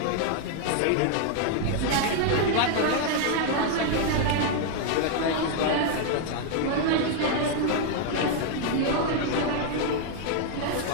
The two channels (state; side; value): different; both; correlation 0.00